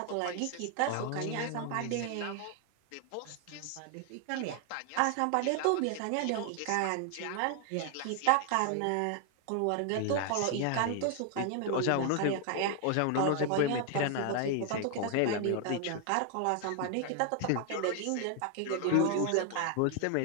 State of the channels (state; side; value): different; both; correlation 0.00